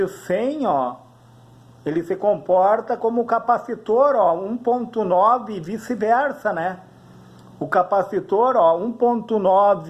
ó, ele se comporta como capacitor, ó, 1.9 e vice-versa, né? O capacitor, ó,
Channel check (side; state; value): both; identical; correlation 1.00